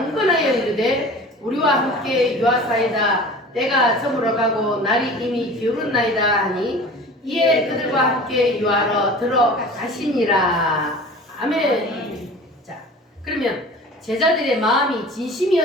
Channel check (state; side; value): normal; both; correlation 0.40